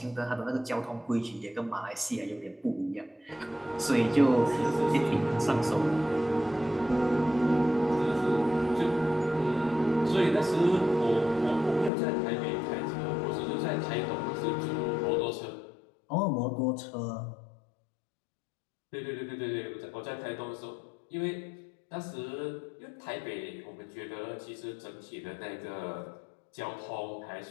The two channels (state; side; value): drops out; right; at 11.9 s